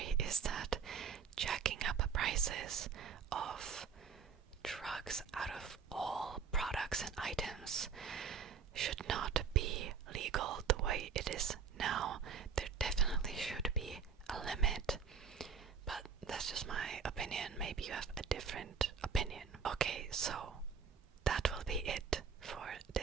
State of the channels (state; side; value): quieter; left; 6.4 dB